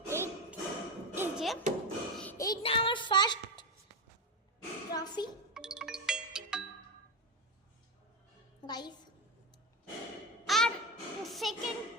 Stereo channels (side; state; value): both; normal; correlation 0.16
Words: এই যে এইটা আমার ফার্স্ট ট্রফি গাইস, আর সেকেন্ড